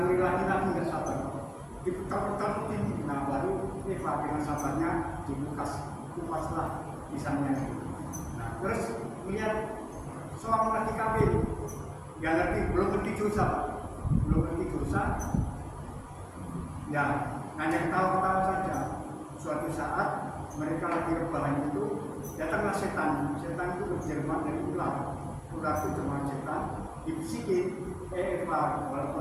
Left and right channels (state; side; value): identical; both; correlation 1.00